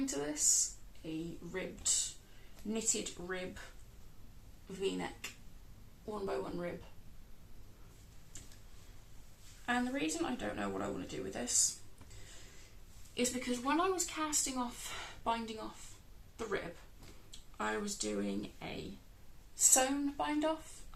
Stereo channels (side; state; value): both; identical; correlation 1.00